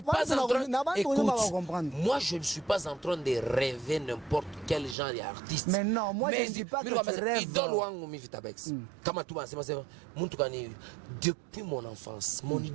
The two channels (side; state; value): left; drops out; at 5.0 s